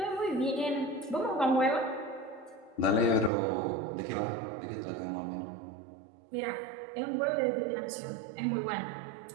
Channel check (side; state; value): left; drops out; at 3.3 s